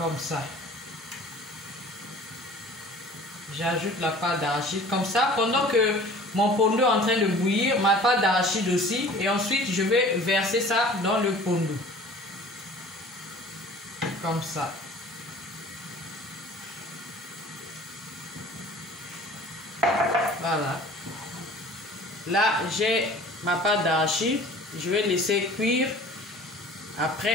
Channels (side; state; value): both; normal; correlation 0.46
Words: ça. J'ajoute la pâte d'arachide. Comme ça, pendant que mon pondo est en train de bouillir, ma pâte d'arachide aussi. Et ensuite, je vais verser ça dans le pondo. Comme ça. Voilà. Là, j'ai ma pâte d'arachide. Je vais laisser cuire.